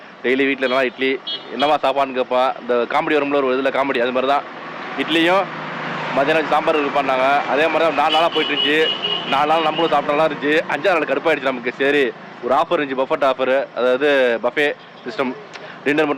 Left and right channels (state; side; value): identical; both; correlation 1.00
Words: டெய்லி வீட்டில் என்னன்னா இட்லி, என்னவா சாப்பாடுன்னு கேட்பான். இந்த காமெடி வரும்ல ஒரு இதில் காமெடி, அது மாதிரி தான் இட்லியும் மதியானம் சாம்பார் இருப்பான்னாங்க. அதே மாதிரி தான் 4 நாளாக போயிட்டுருந்துச்சு. 4 நாள் நம்மளும் சாப்பிட்டாலாம் இருந்துச்சு. 5ஆவது நாள் கடுப்பாயிடுச்சு நமக்கு. சரி, ஒரு ஆஃபர் இருந்துச்சு, பஃபட் ஆஃபர், அதாவது பஃபே சிஸ்டம். டின்னர்